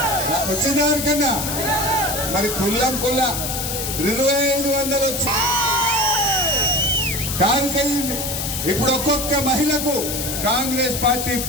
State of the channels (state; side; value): noise; left; hiss, 3 dB below the sound